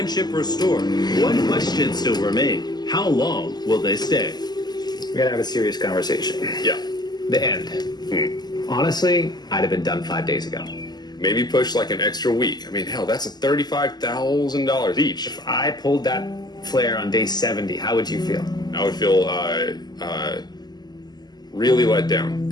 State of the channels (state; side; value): late; right; 0.20 ms